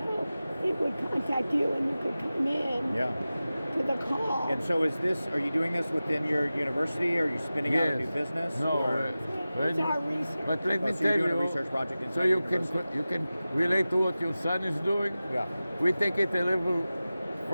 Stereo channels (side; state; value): both; inverted; correlation -0.96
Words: it would contact you and you could come in to the call. And so are you doing this within your university? Or are you spinning out a new business? No, It's our research. but let me So tell you're doing you, a research project inside so you university? can relate to what your son is doing. Yeah. We take it a level